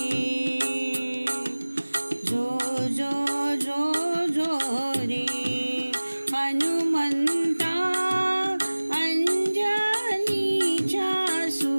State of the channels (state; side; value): inverted; both; correlation -1.00